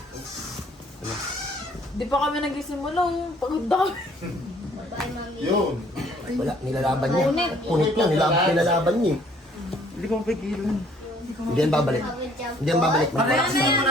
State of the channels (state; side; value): normal; both; correlation 0.60